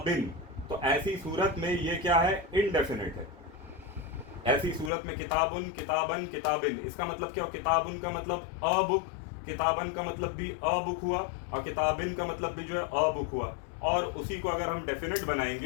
तो ऐसी सूरत में ये क्या है? इनडेफिनिट है। ऐसी सूरत में किताबुन, किताबन, किताबिन, इसका मतलब क्या? किताबुन का मतलब अ बुक, किताबन का मतलब भी अ बुक हुआ, और किताबिन का मतलब भी जो है अ बुक हुआ। और उसी को अगर हम डेफिनेट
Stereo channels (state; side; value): drops out; right; at 4.9 s